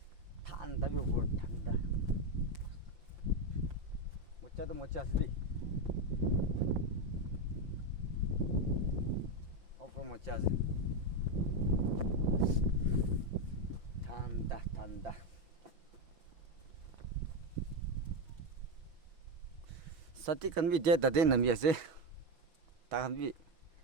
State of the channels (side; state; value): left; late; 5.8 ms